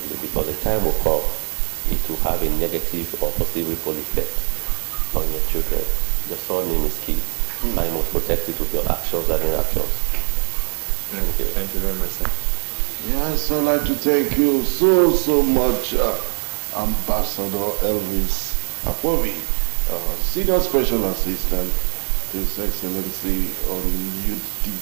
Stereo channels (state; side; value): silent; left; digital silence